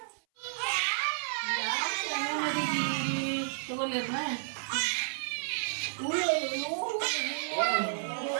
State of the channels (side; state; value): left; silent; 57 dB below the other